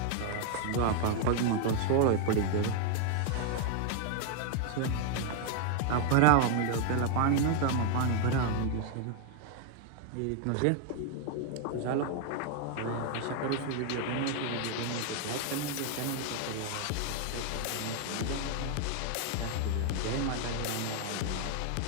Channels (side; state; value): both; different; correlation 0.00